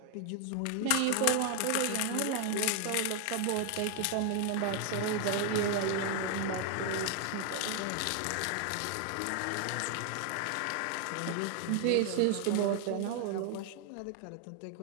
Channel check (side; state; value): both; different; correlation 0.00